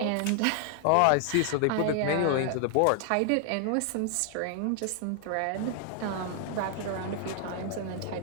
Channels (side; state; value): both; different; correlation 0.00